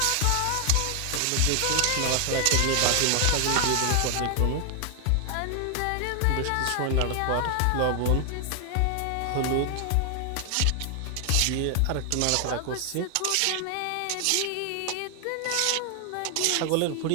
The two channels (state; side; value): different; both; correlation 0.00